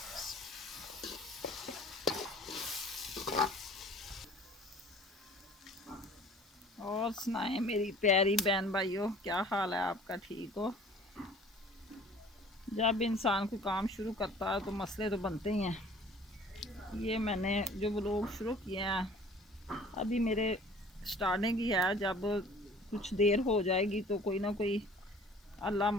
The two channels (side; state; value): both; normal; correlation 0.49